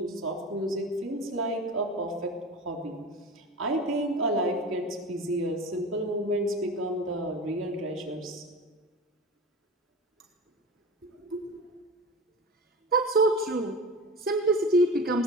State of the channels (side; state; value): both; normal; correlation 0.32